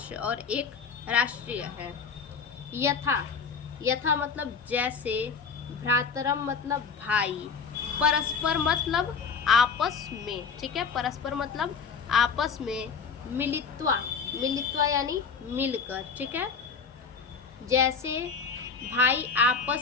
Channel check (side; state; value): right; quieter; 5.5 dB